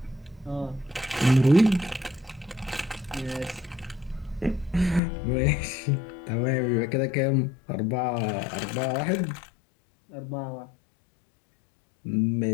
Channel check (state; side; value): drops out; right; at 5.0 s